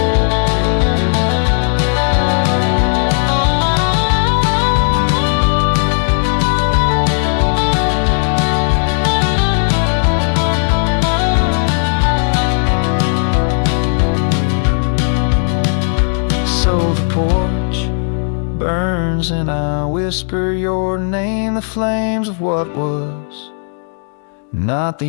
Porch burns and I whisper your name, the flames of what was, not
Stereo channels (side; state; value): right; silent; 58 dB below the other